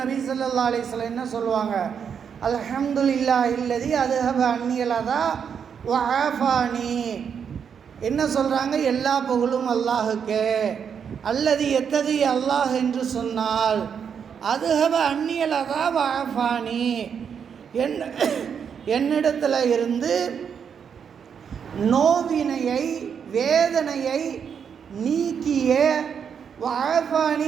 நபி ஸல்லல்லாஹு அலைஹி வஸல்லம் என்ன சொல்லுவாங்க? அல்ஹம்துலில்லாஹ் இல்லதி அதுஹப அன்னியல் அதா வ ஆஃபானி. என்ன சொல்கிறாங்க? எல்லா புகழும் அல்லாஹுக்கே. அல்லது எத்தகைய அல்லாஹ் என்று சொன்னால் அதுஹப அன்னியல் அதா வ ஆஃபானி, என்னிடத்தில் இருந்து நோவினையை, வேதனையை நீக்கிய, வாஃபானி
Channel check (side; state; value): left; quieter; 7.2 dB